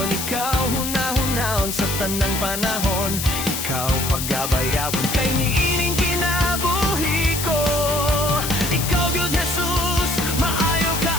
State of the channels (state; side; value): noise; left; hiss, 4 dB below the sound